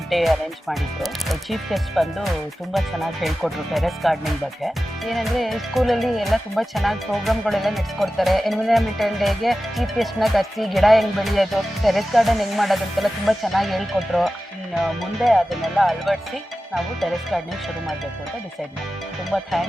ಡೇ ಅರೇಂಜ್ ಮಾಡಿದ್ರು. ಚೀಫ್ ಗೆಸ್ಟ್ ಬಂದು ತುಂಬ ಚೆನ್ನಾಗಿ ಹೇಳ್ಕೊಟ್ರು ಟೆರೆಸ್ ಗಾರ್ಡನಿಂಗ್ ಬಗ್ಗೆ. ಏನಂದರೆ ಸ್ಕೂಲಲ್ಲಿ ಎಲ್ಲ ತುಂಬ ಚೆನ್ನಾಗಿ ಪ್ರೋಗ್ರಾಮ್ಗಳೆಲ್ಲ ನಡೆಸ್ಕೊಡ್ತಾರೆ. ಎನ್ವೈರನ್ಮೆಂಟಲ್ ಡೇಗೆ ಚೀಫ್ ಗೆಸ್ಟ್ನ ಕರೆಸಿ ಗಿಡ ಹೆಂಗೆ ಬೆಳೆಯೋದು, ಟೆರೆಸ್ ಗಾರ್ಡನ್ ಹೆಂಗೆ ಮಾಡೋದು ಅಂತೆಲ್ಲ ತುಂಬ ಚೆನ್ನಾಗಿ ಹೇಳ್ಕೊಟ್ರು. ಇನ್ನು ಮುಂದೆ ಅದನ್ನೆಲ್ಲ ಅಳವಡಿಸಿ ನಾವು ಟೆರೆಸ್ ಗಾರ್ಡನಿಂಗ್ ಶುರು ಮಾಡಬೇಕು ಅಂತ ಡಿಸೈಡ್ ಮಾಡಿದ್ವಿ. ತುಂಬ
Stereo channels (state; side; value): normal; both; correlation 0.94